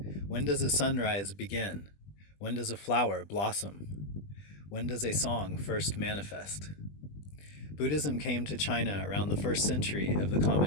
When does a sunrise begin? When does a flower blossom? When does a song first manifest? Buddhism came to China around the 1st century of the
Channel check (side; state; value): right; late; 20 ms